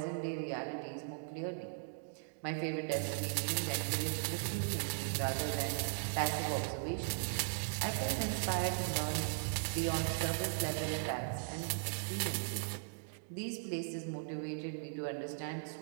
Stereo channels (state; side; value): silent; left; digital silence